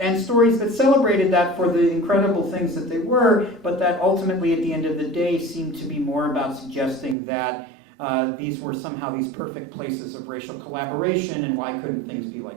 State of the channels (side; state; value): left; drops out; at 7.2 s